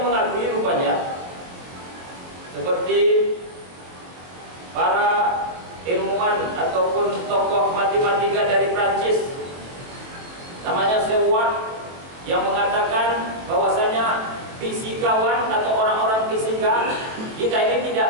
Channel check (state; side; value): late; left; 23 ms